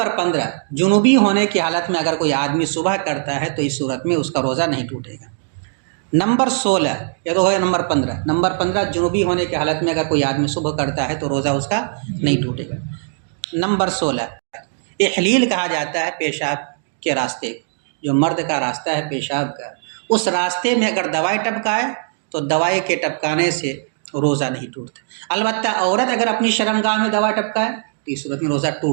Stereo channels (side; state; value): left; silent; digital silence